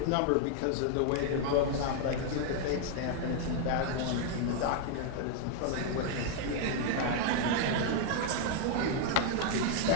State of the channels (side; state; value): both; different; correlation -0.01